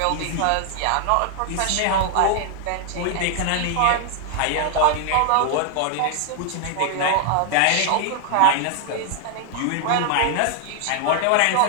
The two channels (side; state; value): both; different; correlation 0.00